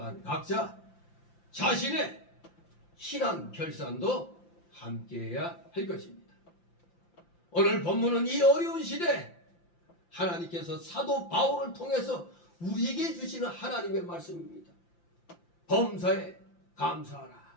각자 자신의 신앙 결산도 함께해야 할 것입니다. 오늘 본문은 이 어려운 시대 하나님께서 사도 바울을 통해서 우리에게 주시는 하나님의 말씀입니다. 범사에 감사하라.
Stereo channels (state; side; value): late; right; 5.8 ms